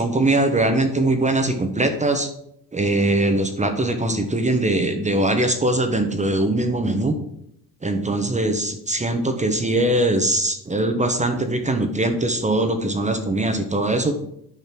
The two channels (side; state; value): both; normal; correlation 0.42